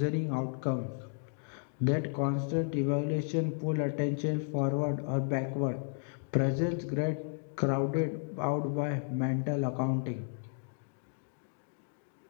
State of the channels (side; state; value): right; silent; digital silence